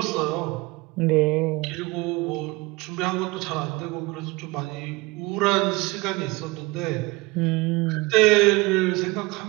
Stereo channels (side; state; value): left; quieter; 23.2 dB